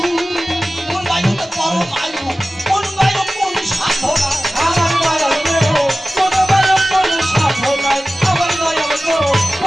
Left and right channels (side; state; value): both; normal; correlation 0.96